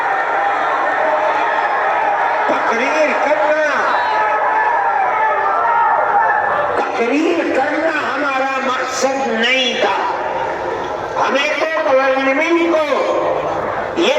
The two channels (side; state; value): both; identical; correlation 1.00